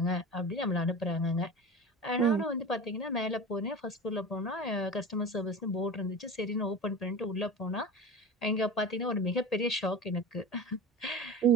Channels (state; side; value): normal; both; correlation 0.32